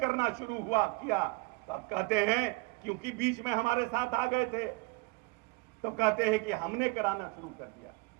करना शुरू किया, तो अब कहते हैं क्योंकि बीच में हमारे साथ आ गए थे, तो कहते हैं कि हमने कराना शुरू कर दिया।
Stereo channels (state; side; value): quieter; left; 25.5 dB